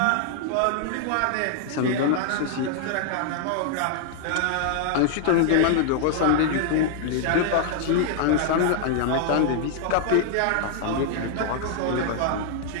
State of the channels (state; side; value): different; both; correlation -0.01